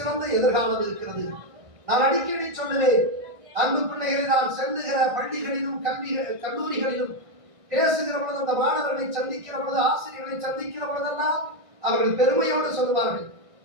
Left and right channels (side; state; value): left; late; 1.6 ms